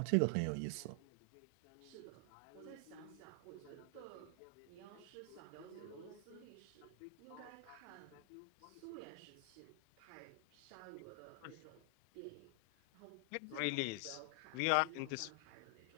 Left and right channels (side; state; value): both; different; correlation 0.00